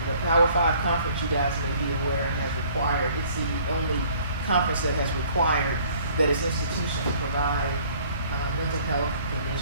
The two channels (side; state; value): both; inverted; correlation -0.56